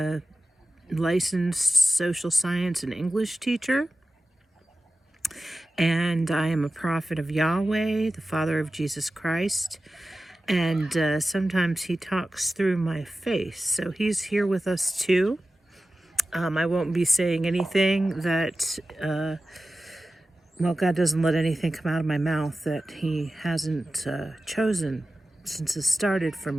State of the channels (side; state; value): both; normal; correlation 0.95